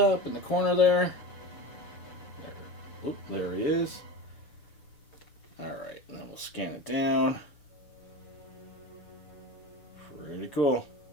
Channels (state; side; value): late; right; 6.9 ms